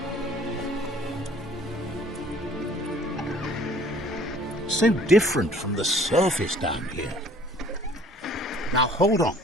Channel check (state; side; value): normal; both; correlation 0.54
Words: So different from the surface down here. Now hold on.